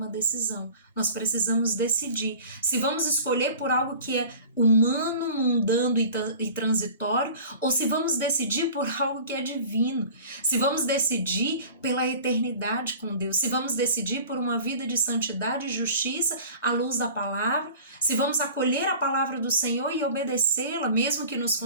decisão. Nós precisamos decidir se vamos escolher por algo que é humano, mundano e transitório, ou se vamos decidir por algo que é divino. Se vamos decidir pela eternidade com Deus, se vamos decidir por uma vida de santidade e justiça à luz da palavra, se vamos acolher a palavra do Senhor e obedecê-la, mesmo que nos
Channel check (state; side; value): inverted; both; correlation -0.42